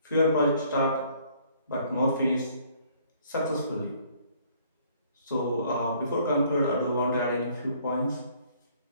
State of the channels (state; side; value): inverted; both; correlation -0.61